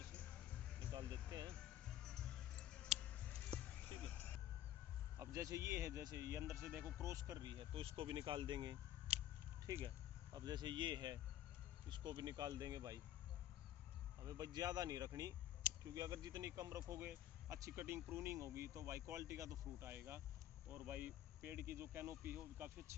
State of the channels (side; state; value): right; quieter; 12.3 dB